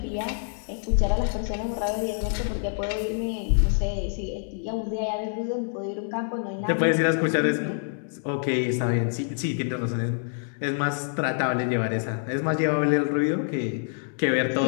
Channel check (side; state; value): right; silent; digital silence